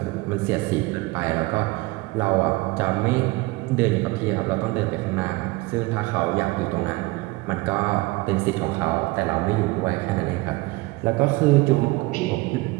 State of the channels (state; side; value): quieter; left; 22.2 dB